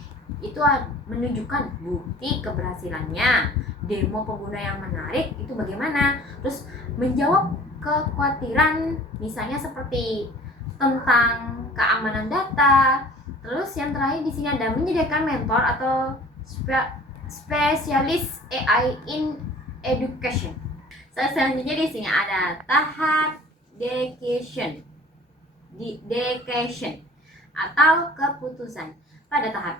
itu menunjukkan bukti keberhasilannya. Demo pengguna yang menarik itu bagaimana? Terus menjawab kekhawatiran misalnya seperti tentang keamanan data. Terus yang terakhir di sini ada menyediakan mentor atau spesialis AI in education. Selanjutnya di sini ada tahap dedication atau keputusan. Pada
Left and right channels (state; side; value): normal; both; correlation 0.48